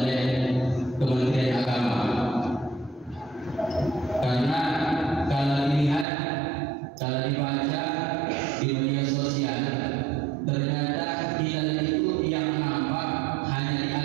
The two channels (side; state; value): left; drops out; at 6.1 s